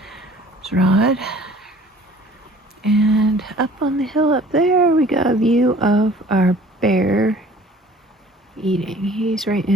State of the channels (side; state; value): both; normal; correlation 0.50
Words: There's Rod. And up on the hill up there, we got a view of our bear eating. He's right